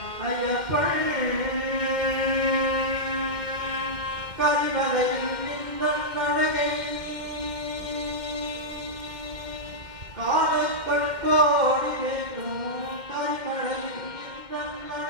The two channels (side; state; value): left; late; 2.1 ms